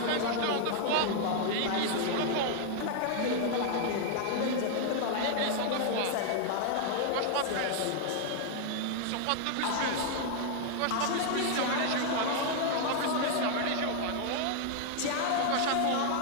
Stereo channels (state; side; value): different; both; correlation 0.00